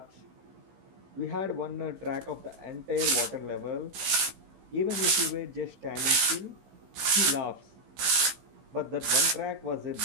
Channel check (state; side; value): late; left; 15 ms